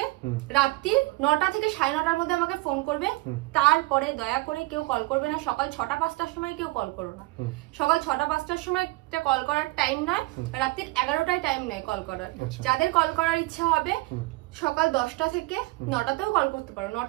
রাত্রি 9টা থেকে 9:30-র মধ্যে আমাকে ফোন করবে। তারপরে দয়া করে কেউ কল করবে না সকাল 6টা-5টার সময়, কেউ কল করো না। সকাল 6টা-5টার সময় কল করার টাইম নয়, রাত্রি 11টায় টাইম নেই কল করার। যাদের কল করার ইচ্ছা হবে সকাল 10টা থেকে 9টাতেও কল করতে পারো,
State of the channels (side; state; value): left; quieter; 22.2 dB